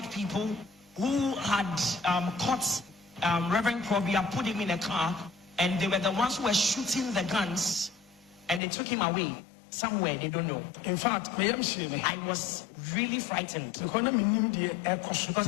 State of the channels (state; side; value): drops out; right; at 8.6 s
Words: people who had caught Reverend Krobia, put him in a car, and they were the ones who were shooting the guns, and they took him away somewhere, they don't know. In fact, I was really frightened because